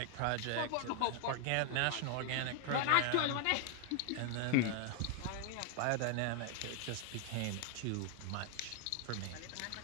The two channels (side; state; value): both; different; correlation 0.00